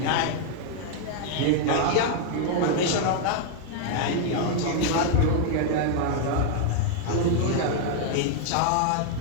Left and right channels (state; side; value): different; both; correlation 0.00